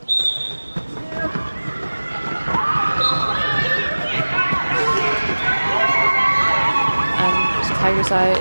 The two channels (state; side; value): inverted; both; correlation -1.00